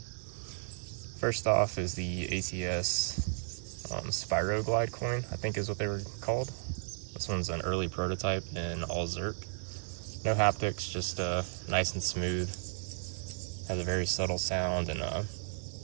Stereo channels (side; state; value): left; silent; digital silence